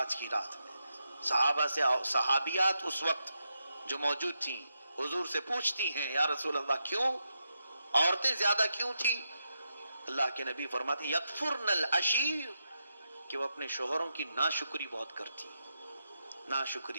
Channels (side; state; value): both; inverted; correlation -0.85